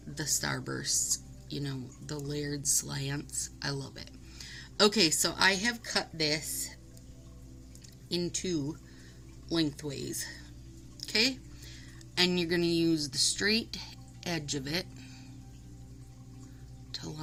the starbursts, you know, the layered slants. I love it. Okay, so I have cut this into lengthways. Okay, and you're going to use the straight edge of it to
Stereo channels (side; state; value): both; identical; correlation 1.00